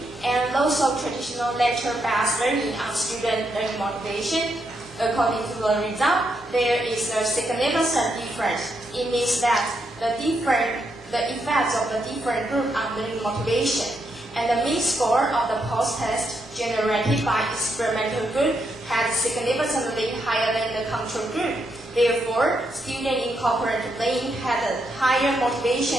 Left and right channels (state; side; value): normal; both; correlation 0.80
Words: and those of traditional lecture-based learning on student learning motivation? According to the result, there is a significant difference. It means that the effects of the different group on learning motivation and the mean score of the post-test generated by experimental group had significantly higher than the control group. Therefore, students in cooperative learning had a higher